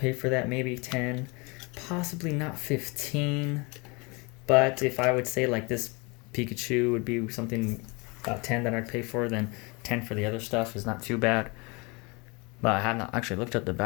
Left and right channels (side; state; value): right; quieter; 28.4 dB